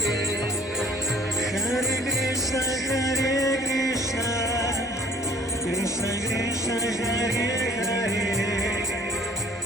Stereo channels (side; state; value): both; normal; correlation 0.55